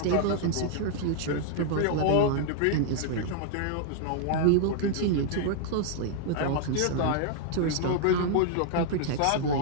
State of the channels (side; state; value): both; different; correlation -0.01